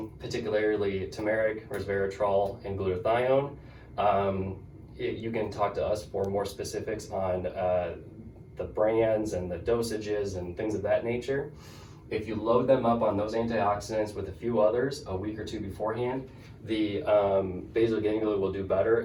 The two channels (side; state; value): both; identical; correlation 1.00